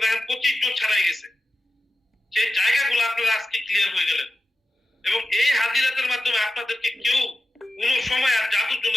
দেখেন 25 জন ছাড়াই গেছে। সেই জায়গাগুলো আপনারা আজকে ক্লিয়ার হয়ে গেলেন। এবং এই হাজিরাতের মাধ্যমে আপনাদেরকে কেউ কোন সময় আর জাদুর জন্য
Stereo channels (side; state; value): both; normal; correlation 0.92